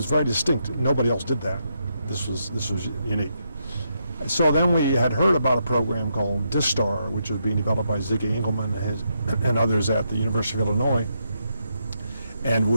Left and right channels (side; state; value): both; inverted; correlation -0.80